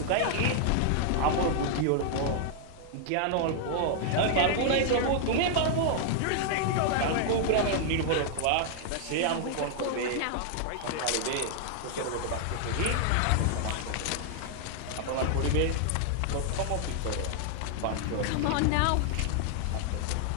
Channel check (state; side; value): different; both; correlation 0.00